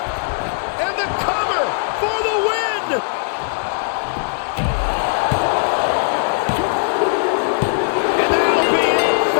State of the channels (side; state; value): right; silent; 67 dB below the other